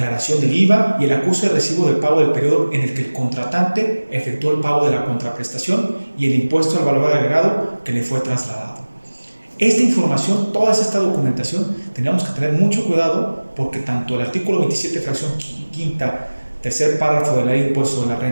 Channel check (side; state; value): both; inverted; correlation -1.00